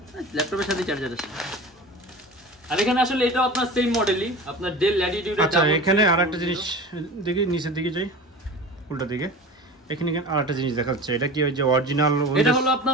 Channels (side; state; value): both; normal; correlation 0.35